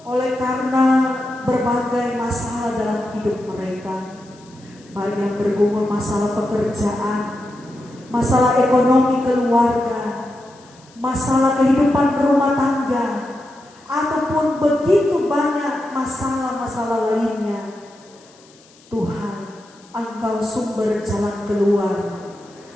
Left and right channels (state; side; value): noise; left; hiss, 28 dB below the sound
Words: oleh karena berbagai masalah dalam hidup mereka, baik yang bergumul masalah pekerjaan, masalah ekonomi keluarga, masalah kehidupan berumah tangga, ataupun begitu banyak masalah-masalah lainnya. Tuhan, Engkau sumber jalan keluar